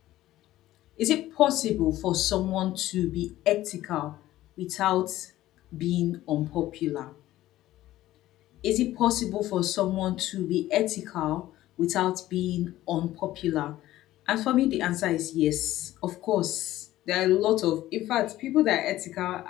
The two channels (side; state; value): right; quieter; 15.0 dB